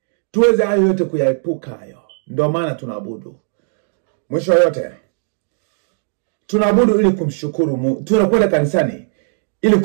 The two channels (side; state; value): left; silent; digital silence